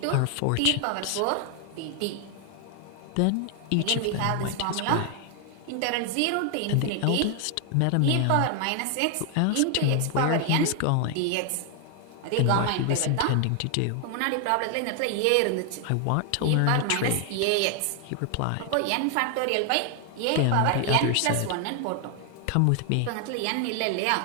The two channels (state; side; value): different; both; correlation 0.00